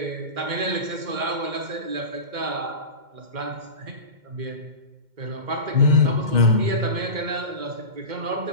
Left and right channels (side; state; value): left; late; 2.2 ms